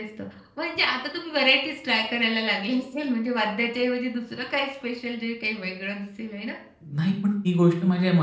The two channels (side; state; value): both; identical; correlation 1.00